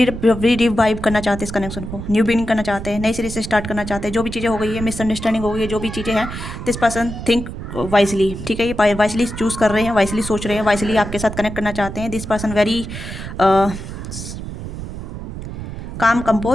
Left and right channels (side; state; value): right; noise; rumble, 8 dB below the sound